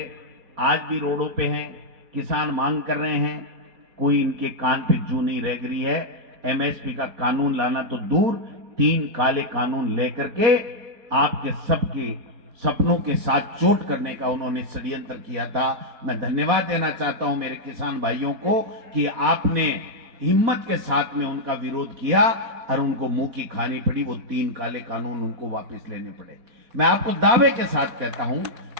आज भी रोडों पे हैं, किसान मांग कर रहे हैं, कोई इनके कान पे जू नहीं रह गई है। एमएसपी का कानून लाना तो दूर, 3 काले कानून लेकर के आपके सबके सपनों के साथ चोट करने का उन्होंने षड्यंत्र किया था। मैं धन्यवाद देना चाहता हूं मेरे किसान भाइयों को कि आपने हिम्मत के साथ में उनका विरोध किया और उनको मुंह की खानी पड़ी, वो 3 काले कानून उनको वापस लेने पड़े। मैं आपको दावे के साथ कहता हूं,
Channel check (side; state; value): left; late; 4.1 ms